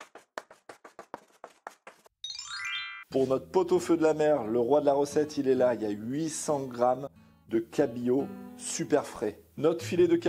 Pour notre pot-au-feu de la mer, le roi de la recette, il est là. Il y a 800 grammes de cabillaud super frais. Notre filet de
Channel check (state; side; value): identical; both; correlation 1.00